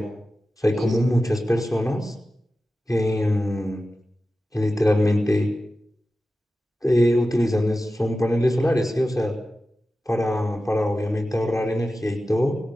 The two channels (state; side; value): normal; both; correlation 0.94